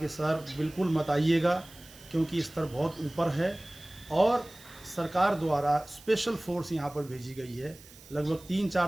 सर बिल्कुल मत आइएगा, क्योंकि स्तर बहुत ऊपर है और सरकार द्वारा स्पेशल फोर्स यहाँ पर भेजी गई है। लगभग 3-4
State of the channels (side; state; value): right; noise; hiss, 21 dB below the sound